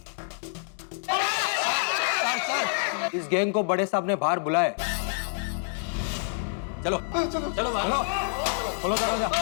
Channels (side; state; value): right; silent; digital silence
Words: सर, इस गैंग को बड़े साहब ने बाहर बुलाया। चलो चलो खोलो दरवाजा।